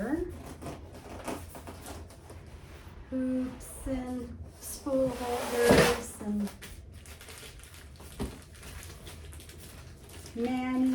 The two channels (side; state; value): both; identical; correlation 1.00